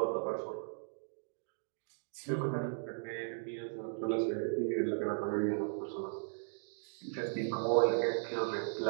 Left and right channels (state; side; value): silent; left; digital silence